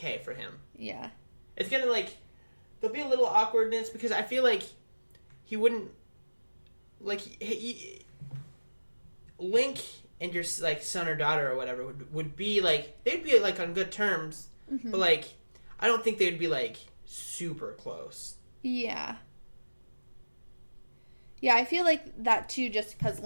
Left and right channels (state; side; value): inverted; both; correlation -1.00